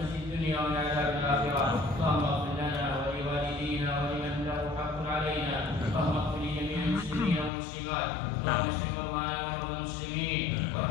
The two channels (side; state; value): right; drops out; at 7.5 s